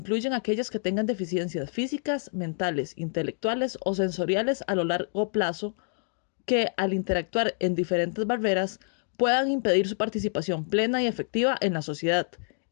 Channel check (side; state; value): right; silent; digital silence